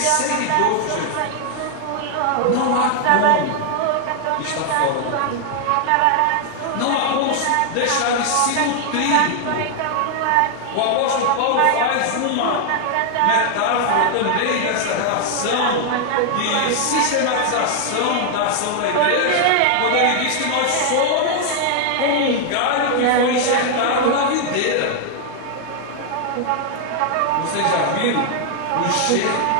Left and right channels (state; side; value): different; both; correlation 0.00